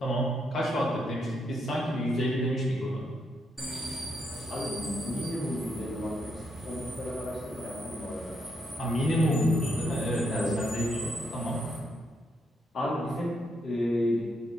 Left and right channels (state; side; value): normal; both; correlation 0.78